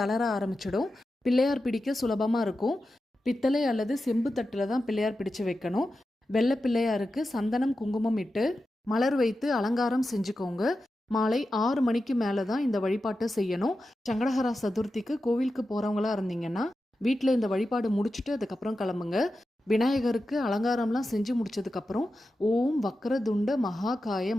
தளர ஆரம்பிச்சிடும். பிள்ளையார் பிடிக்க சுலபமாக இருக்கும். பித்தளை அல்லது செம்பு தட்டில் தான் பிள்ளையார் பிடிச்சு வைக்கணும். வெள்ளை பிள்ளையாருக்கு சந்தனம் குங்குமம் இட்டு மலர் வைத்து அலங்காரம் செஞ்சுக்கோங்க. மாலை 6 மணிக்கு மேலே தான் இந்த வழிபாட்டை செய்யணும். சங்கடஹர சதுர்த்திக்கு கோவிலுக்கு போகிறவங்களா இருந்தீங்கன்னா வீட்டில் இந்த வழிபாடு முடிச்சுட்டு அதுக்கப்புறம் கிளம்புங்க. விநாயகருக்கு அலங்காரம்லாம் செஞ்சு முடிச்சதுக்கப்புறம் ஓம் வக்ரதுண்ட மகாகாய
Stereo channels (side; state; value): both; normal; correlation 0.91